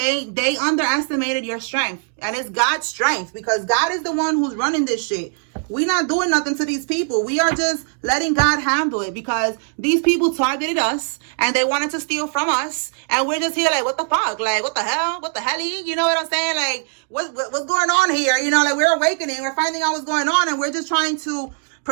They underestimated your strength. And it's God's strength. Because God is the one who's running this shit. We're not doing nothing to these people. We are just letting God handle it. Because these people targeted us. And they wanted to steal from us. And we're just here like, what the fuck? Like, what the hell? What the hell? You know what I'm saying? Like, what's going on here? You know, like, we're awakening. We're finding out what's going on. And we're just trying to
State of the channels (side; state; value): left; silent; 60 dB below the other